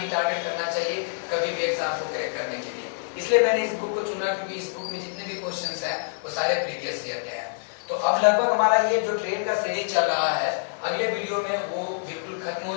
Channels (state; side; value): silent; right; 61 dB below the other